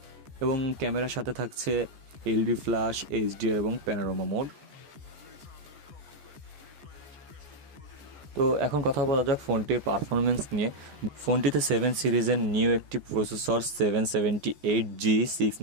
এবং ক্যামেরার সাথে থাকছে এলইডি ফ্ল্যাশ, এইচডিআর এবং প্যানোরামা মোড। তো এখন কথা বলা যাক ফোনটির পারফরমেন্স নিয়ে। ফোনটিতে 7 সিরিজের নিউ একটি প্রসেসর 778G 6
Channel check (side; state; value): left; late; 14 ms